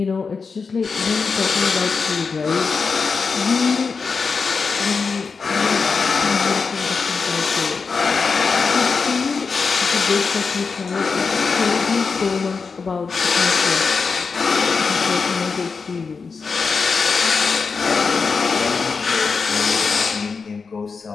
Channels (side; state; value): right; quieter; 5.0 dB